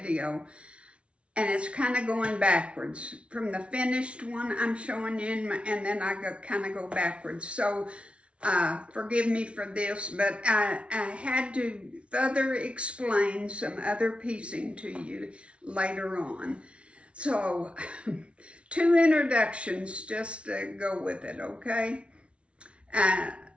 and it's kind of going backwards. From the finished one I'm showing you, and then I kind of go backwards. So forgive me for this, but I had to further explain some other piecing to you later on. So, two introductions just to go with it, okay?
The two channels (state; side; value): late; left; 0.060 ms